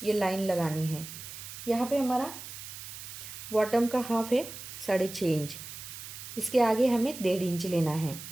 ये लाइन लगानी है। यहाँ पे हमारा बॉटम का हाफ है 6.5 इंच, इसके आगे हमें 1.5 इंच लेना है।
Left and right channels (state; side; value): noise; right; hiss, 11 dB below the sound